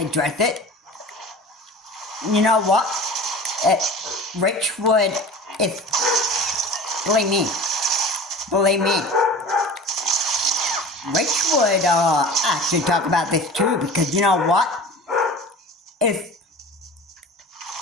address it. You know what? Rich would, believe me, Rich would actually talk about this too, because you know what? If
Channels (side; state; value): both; normal; correlation 0.38